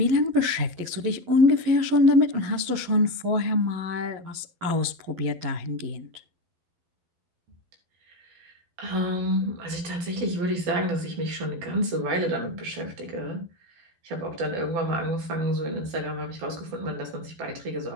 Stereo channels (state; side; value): late; left; 12 ms